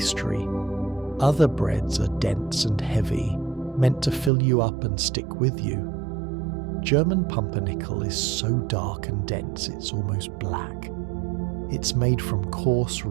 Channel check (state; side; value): drops out; left; at 4.3 s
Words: Other breads are dense and heavy, meant to fill you up and stick with you. German pumpernickel is so dark and dense it's almost black. It's made from coarse